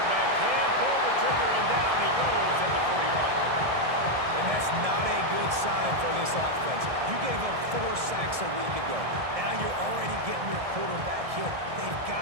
can't pull the trigger, and down he goes at the 41. And that's not a good sign for this offense. You gave up 4 sacks a week ago. Now you're already getting your quarterback hit. They've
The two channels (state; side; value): late; left; 1.7 ms